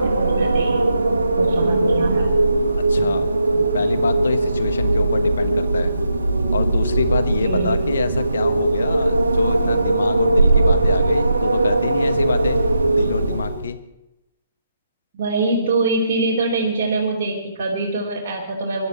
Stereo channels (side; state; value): both; inverted; correlation -0.81